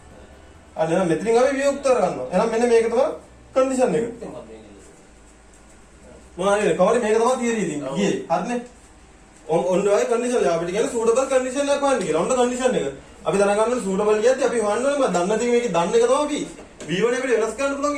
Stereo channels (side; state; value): both; identical; correlation 1.00